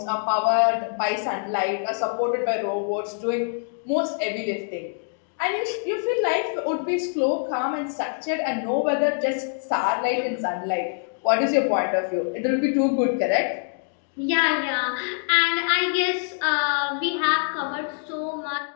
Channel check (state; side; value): silent; right; digital silence